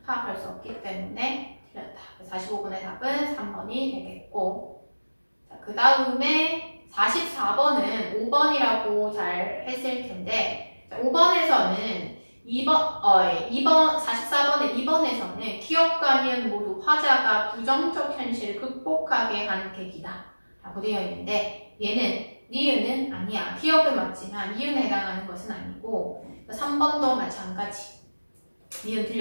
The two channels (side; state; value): both; inverted; correlation -1.00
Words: 파악할 수 없기 때문에 틀렸다. 45번의 답은 3번이 되겠고, 자, 그 다음에 44번은 5번이라고 잘 했을 텐데, 5번에서는 44번의 2번에서는 기업과 니은 모두 화자가 부정적 현실을 극복하게 하는 계기다 라고 되어 있는데, 얘는 니은은 아니야. 기업은 맞지만 니은에 해당하는 것은 아니고, 3번도 마찬가지. 니은